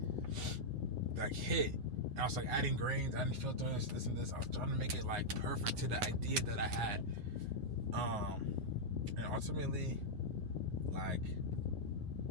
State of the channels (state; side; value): late; left; 9.6 ms